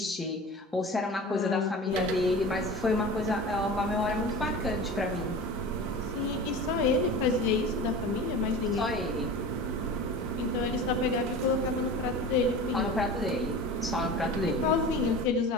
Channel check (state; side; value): normal; both; correlation 0.34